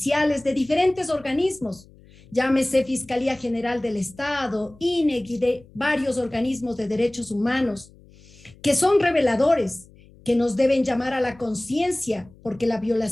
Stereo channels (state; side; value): noise; left; hum, 25 dB below the sound